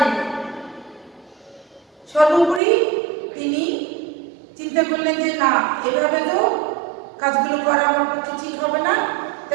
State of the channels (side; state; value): left; drops out; at 2.6 s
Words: সর্বোপরি তিনি চিন্তা করলেন যে না, এভাবে তো কাজগুলো করা আমার পক্ষে ঠিক হবে না,